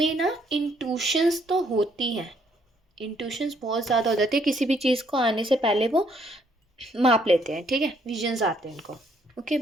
ना इंट्यूशंस तो होती हैं, इंट्यूशंस बहुत ज़्यादा हो जाती है, किसी भी चीज़ को आने से पहले वो माप लेते हैं, ठीक है, विजन्स आते हैं उनको। ओके,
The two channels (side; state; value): both; normal; correlation 0.68